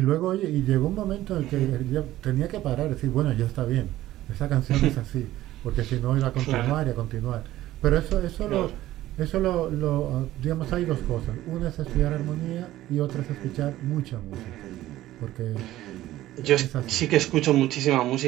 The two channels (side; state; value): left; quieter; 14.9 dB